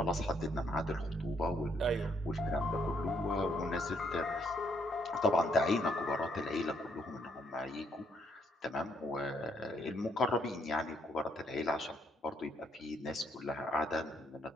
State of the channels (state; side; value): normal; both; correlation 0.71